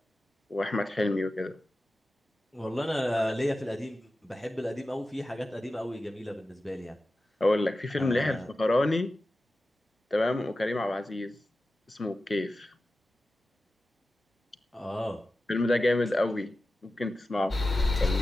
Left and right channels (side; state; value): both; normal; correlation 0.94